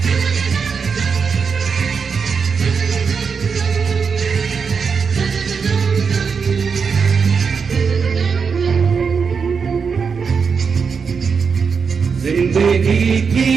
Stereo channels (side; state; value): left; quieter; 5.8 dB